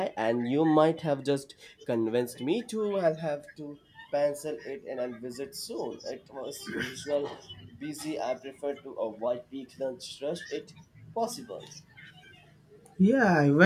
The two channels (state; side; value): identical; both; correlation 1.00